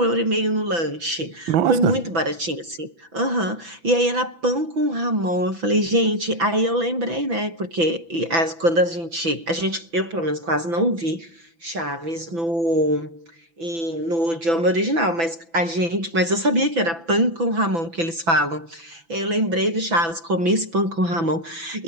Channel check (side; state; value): left; late; 6.0 ms